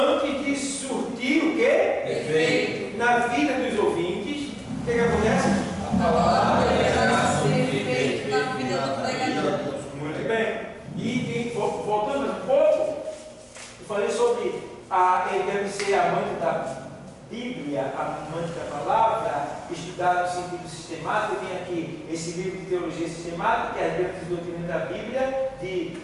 de surtir o Efeito. na vida dos ouvintes, o que acontece? A palavra Ser feito na vida do pregador. Muito bem. E voltando um pouco, eu falei sobre ele deve ser amante da Bíblia, amante da palavra, estudar no sentido sistemático. Eu tenho aqui esse livro de teologia sistemática, que é a Bíblia de doutrina da Bíblia, de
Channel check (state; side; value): identical; both; correlation 1.00